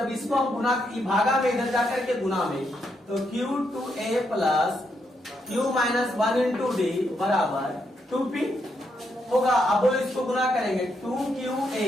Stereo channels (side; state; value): both; normal; correlation 0.79